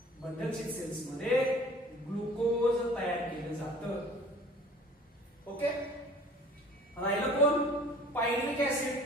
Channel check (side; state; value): both; normal; correlation 0.48